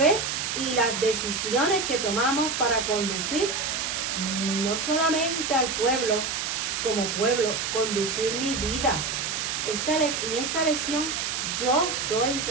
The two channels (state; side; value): noise; right; hiss, 1 dB below the sound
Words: y las decisiones que tomamos para conducir no solamente al pueblo, como pueblo, conducir mi vida. En esta lección yo soy